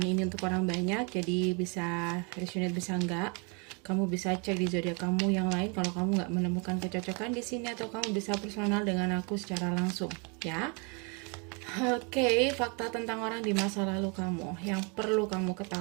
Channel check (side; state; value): left; quieter; 33.6 dB